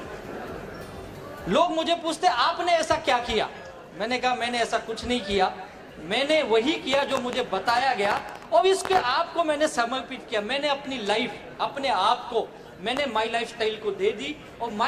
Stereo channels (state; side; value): identical; both; correlation 1.00